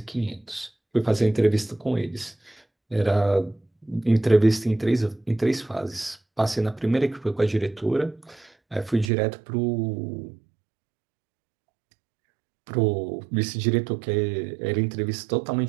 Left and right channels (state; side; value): drops out; left; at 9.1 s